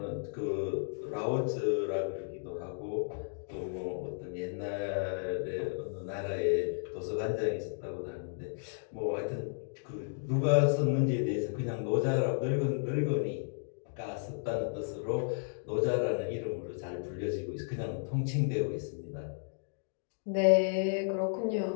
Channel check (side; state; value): right; silent; digital silence